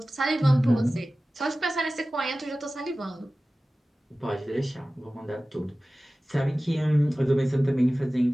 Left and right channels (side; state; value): both; normal; correlation 0.96